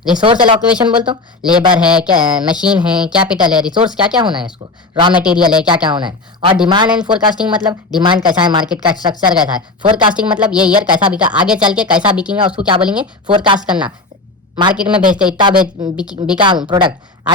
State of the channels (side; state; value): right; quieter; 3.3 dB